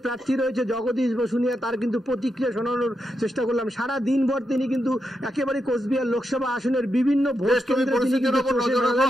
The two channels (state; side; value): normal; both; correlation 0.85